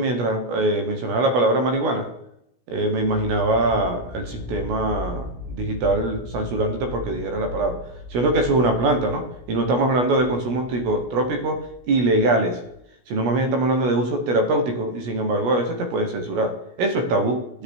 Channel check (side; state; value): left; late; 16 ms